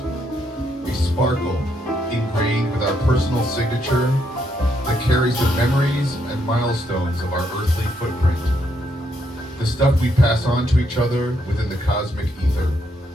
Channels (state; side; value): normal; both; correlation 0.76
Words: A sparkle ingrained with our personal signature that carries the memories and milestones of our earthly footprint. The stuff we pass on to each other within the cosmic ether.